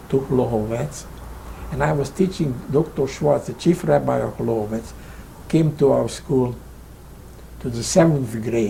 to Holohovec. And I was teaching Dr. Schwartz, the chief rabbi of Holohovec, who came to our school to the 7th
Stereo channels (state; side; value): identical; both; correlation 1.00